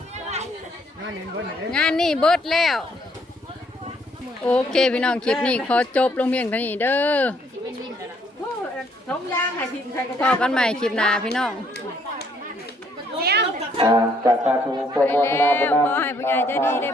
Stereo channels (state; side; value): normal; both; correlation 0.67